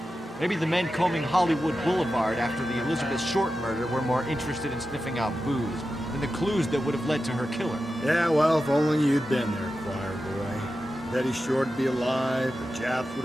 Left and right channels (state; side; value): normal; both; correlation 0.91